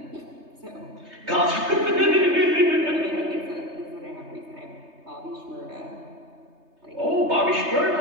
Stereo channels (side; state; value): left; late; 3.3 ms